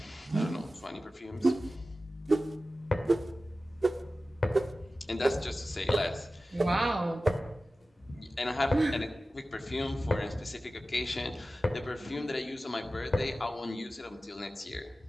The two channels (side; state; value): both; normal; correlation 0.95